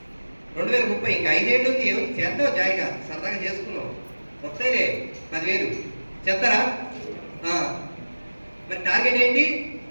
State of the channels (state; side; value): inverted; both; correlation -1.00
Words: 2030 ఇంకా 5 ఏళ్ళు ఉంది, ఏముంది చేద్దాం, జాయిగా సరదాగా చేసుకున్నాం, వస్తాయిలే 10,000. చేస్తారా? మరి టార్గెట్ ఏంటి?